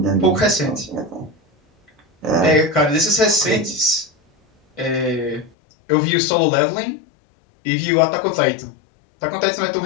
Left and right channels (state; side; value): drops out; right; at 5.5 s